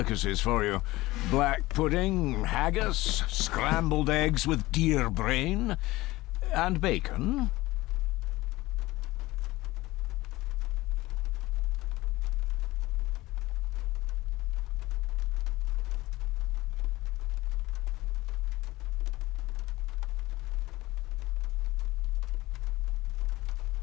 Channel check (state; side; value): quieter; right; 19.0 dB